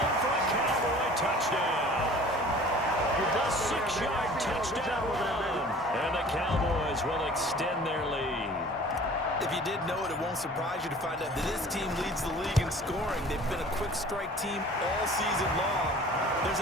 for a Cowboy touchdown. The 6-yard touchdown run. And the Cowboys will extend their lead. If you didn't know it, it won't surprise you to find out that this team leads the league in scoring. They've been a quick strike team all season long. There's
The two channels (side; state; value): both; normal; correlation 0.47